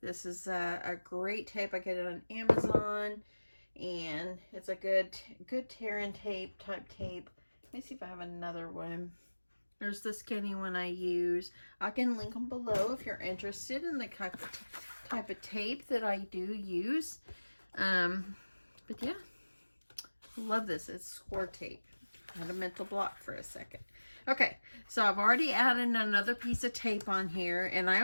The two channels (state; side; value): inverted; both; correlation -1.00